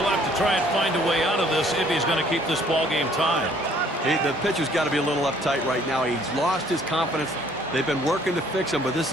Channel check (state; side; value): normal; both; correlation 0.60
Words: to try and find a way out of this if he's going to keep this ball game tied. The pitcher's got to be a little uptight right now. He's lost his confidence. They've been working to fix him, but this